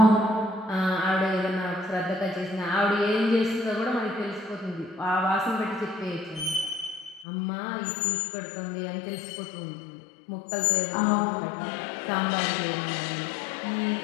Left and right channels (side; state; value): right; drops out; at 7.2 s